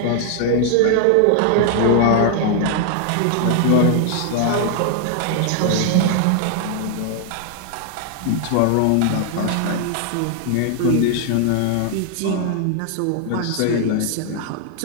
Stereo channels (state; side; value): different; both; correlation 0.00